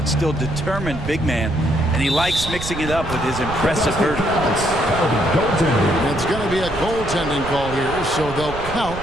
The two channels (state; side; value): noise; right; rumble, 10 dB below the sound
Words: still determined big man, and he likes mixing it up with his impressive vertical. It's going to be a goaltending call here, so they'll count